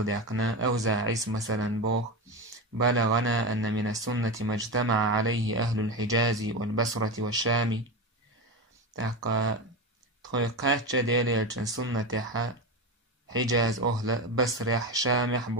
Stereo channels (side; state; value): both; normal; correlation 0.20